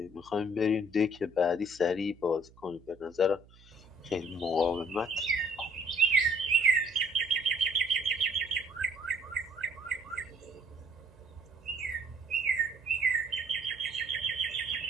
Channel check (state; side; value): noise; right; hum, 25 dB below the sound